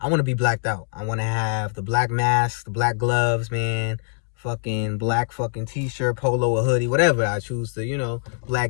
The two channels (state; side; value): silent; right; 63 dB below the other